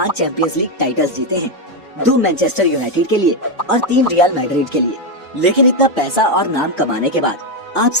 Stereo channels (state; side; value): normal; both; correlation 0.05